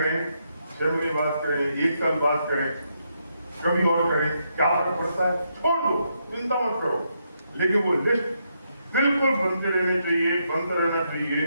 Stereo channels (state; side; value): inverted; both; correlation -0.79